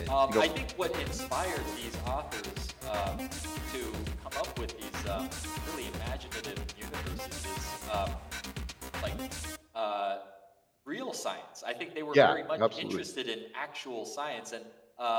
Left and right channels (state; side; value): identical; both; correlation 1.00